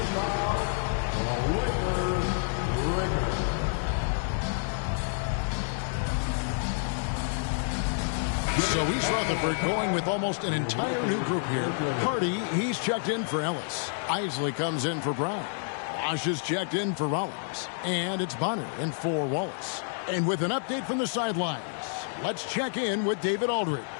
So East Rutherford going with almost an entire new group here. Hardy, he's checked in for Ellis. Isley comes in for Brown. Wash is checked in for Rollins. And it's Bonner in for Wallace. And with an update from the sidelines, let's check in with David Aldridge.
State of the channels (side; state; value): right; silent; 59 dB below the other